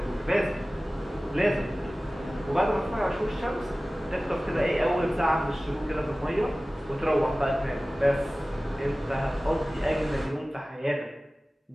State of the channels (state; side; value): normal; both; correlation 0.97